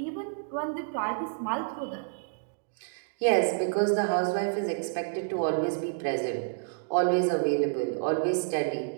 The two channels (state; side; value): silent; left; digital silence